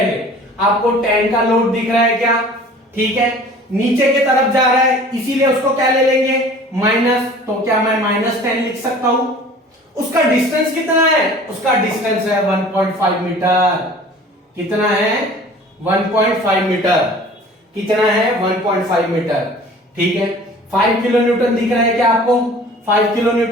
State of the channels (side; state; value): both; normal; correlation 0.46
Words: आपको 10 का लोड दिख रहा है क्या? ठीक है, नीचे की तरफ जा रहा है, इसीलिए उसको क्या ले लेंगे? माइनस। तो क्या मैं -10 लिख सकता हूं? उसका डिस्टेंस कितना है? उसका डिस्टेंस है 1.5 मीटर। कितना है? 1.5 मीटर। कितना है? 1.5 मीटर। ठीक है, 5 किलो न्यूटन दिख रहा है क्या आपको? 5 किलो